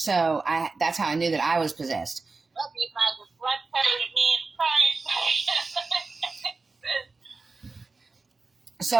that's how I knew that I was possessed.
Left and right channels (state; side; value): quieter; left; 3.9 dB